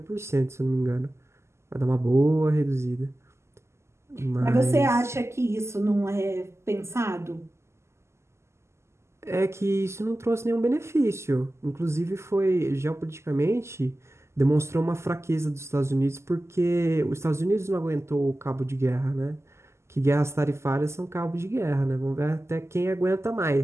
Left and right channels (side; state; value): left; late; 0.13 ms